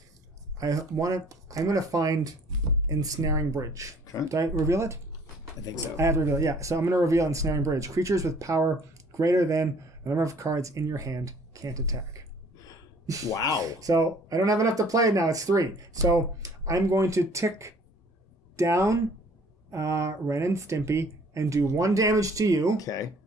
I'm going to find Ensnaring Bridge. Okay. Did I reveal it? I think so. I have to reveal it, yeah. So I'm going to reveal Ensnaring Bridge. Creatures with power greater than the number of cards in your hand can't attack. Wow. So I don't have enough to play now. It's 3. So I'm going to tick down Ren and Stimpy and do 1 damage to you. Okay.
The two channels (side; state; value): both; normal; correlation 0.55